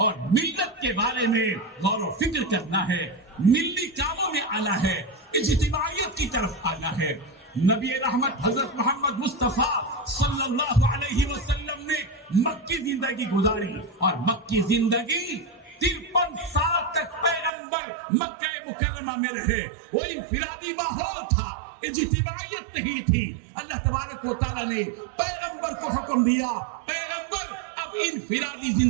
ملت کے بارے میں غور و فکر کرنا ہے، ملی کاموں میں آنا ہے، اجتماعیت کی طرف آنا ہے۔ نبی رحمت حضرت محمد مصطفیٰ صلی اللہ علیہ وسلم نے مکی زندگی گزاری، اور مکی زندگی 53 سال تک پیغمبر مکہ مکرمہ میں رہے۔ وہ انفرادی ماحول تھا، اجتماعیت نہیں تھی۔ اللہ تبارک و تعالیٰ نے پیغمبر کو حکم دیا، پیغمبر اب انفرادی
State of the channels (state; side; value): drops out; left; at 17.5 s